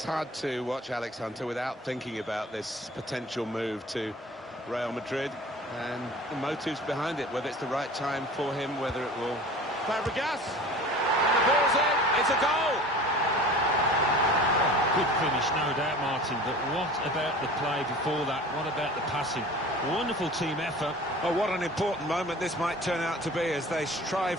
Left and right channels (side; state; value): both; normal; correlation 0.41